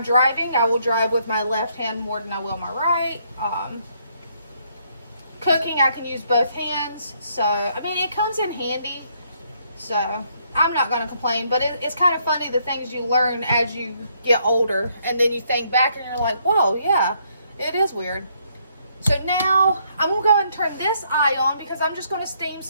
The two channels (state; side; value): inverted; both; correlation -0.71